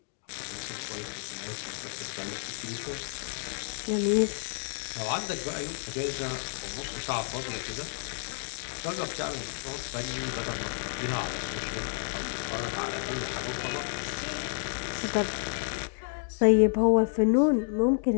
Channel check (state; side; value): silent; right; digital silence